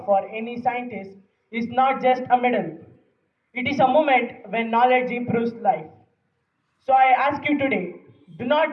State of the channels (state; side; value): identical; both; correlation 1.00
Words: for any scientist is not just a medal. It is a moment when knowledge improves life. So I ask you today, do